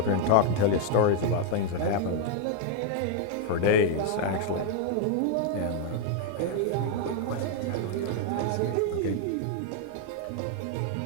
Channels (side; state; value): both; different; correlation 0.00